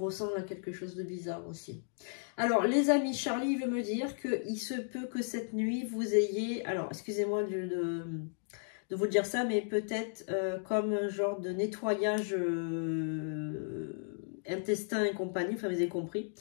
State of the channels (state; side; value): silent; right; digital silence